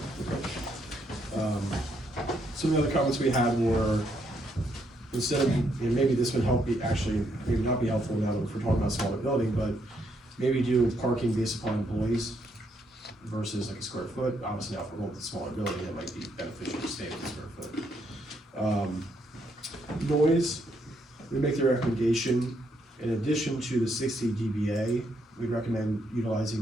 Some of the other comments we had were, instead of, and maybe this would help be, actually, maybe not be helpful now that we're talking about a smaller building, but maybe do parking based upon employees versus like a square foot. Obviously now if we're going with a smaller building, it might be beneficial to stay with a square foot. Noise, we make the recommendation, in addition to the 60 dBA, we'd recommend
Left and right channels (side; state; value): both; normal; correlation 0.75